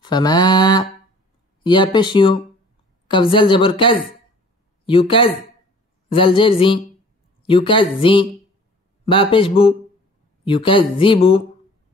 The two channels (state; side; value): normal; both; correlation 0.50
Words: فما يا پیش يو كف زل جبر كز يكز زل جر زي يكزي با پیش بو يكذبو